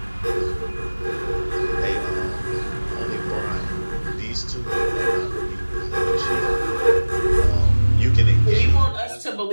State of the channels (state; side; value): inverted; both; correlation -1.00